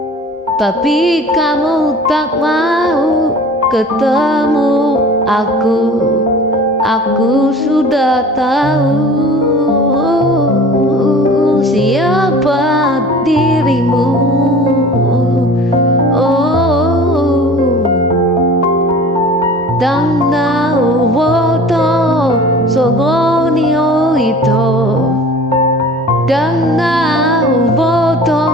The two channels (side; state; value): both; normal; correlation 0.43